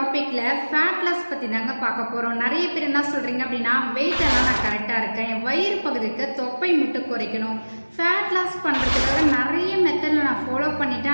ஃபேட் லாஸ் பத்தி தாங்க பார்க்க போறோம். நிறைய பேர் என்ன சொல்றீங்க அப்படின்னா, வெயிட் எல்லாம் நான் கரெக்டா இருக்கேன், என் வயிறு பகுதிக்கு தொப்பை மட்டும் குறைக்கணும், ஃபேட் லாஸ் பண்றதுக்காக நிறைய மெத்தட்ல நான் ஃபாலோ பண்ணிட்டேன்,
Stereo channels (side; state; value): both; inverted; correlation -1.00